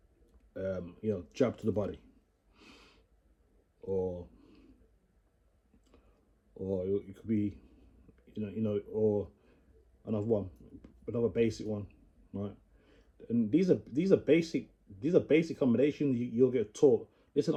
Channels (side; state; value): both; identical; correlation 1.00